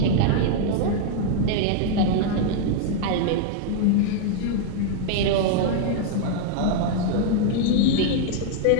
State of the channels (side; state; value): both; different; correlation 0.00